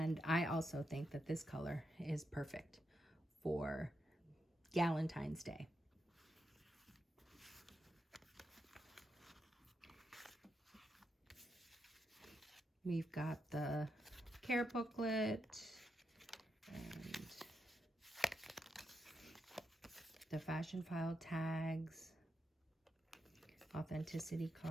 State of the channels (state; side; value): normal; both; correlation 0.84